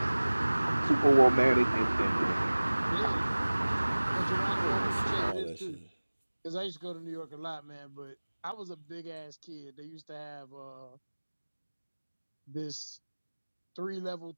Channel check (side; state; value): both; inverted; correlation -1.00